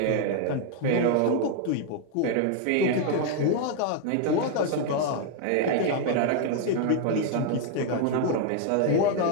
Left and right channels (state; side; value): different; both; correlation 0.00